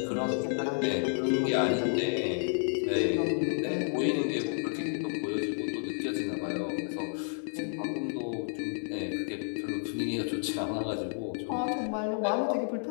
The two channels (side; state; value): right; silent; 57 dB below the other